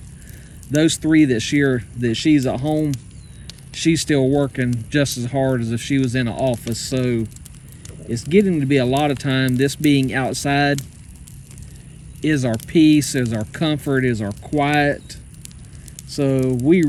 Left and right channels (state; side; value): identical; both; correlation 1.00